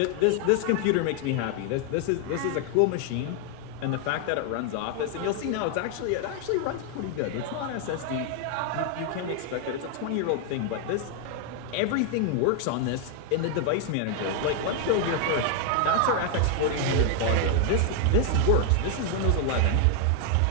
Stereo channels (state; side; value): different; both; correlation 0.00